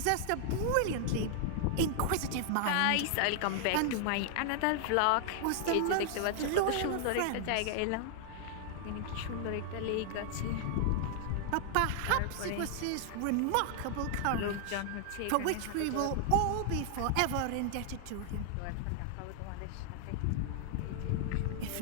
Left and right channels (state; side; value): different; both; correlation 0.00